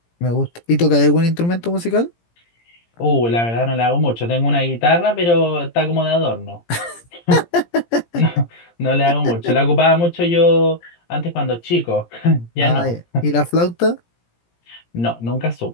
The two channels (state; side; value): late; right; 17 ms